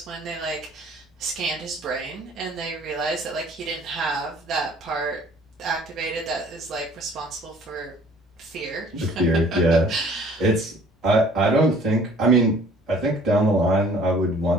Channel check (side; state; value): both; normal; correlation 0.54